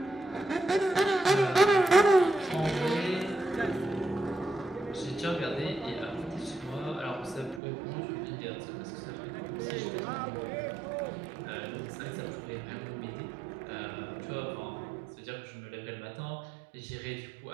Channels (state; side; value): drops out; left; at 7.6 s